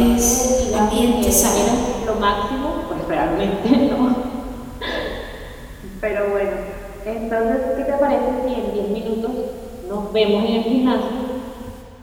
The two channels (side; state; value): both; identical; correlation 1.00